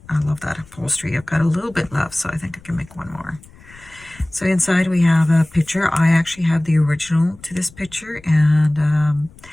I love that upholstery. I've got a little bit left, so I think I can make one more. So inside we have a picture. I actually have the original to this picture, and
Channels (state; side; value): noise; left; rumble, 24 dB below the sound